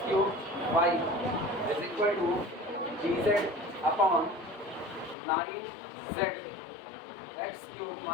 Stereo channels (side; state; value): right; drops out; at 5.2 s